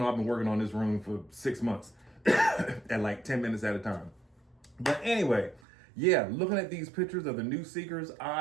I've been working on this room for 6 months at like 10 minutes at a time. But anyway, yeah, looking at these pictures of the new Seekers,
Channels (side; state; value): left; drops out; at 5.6 s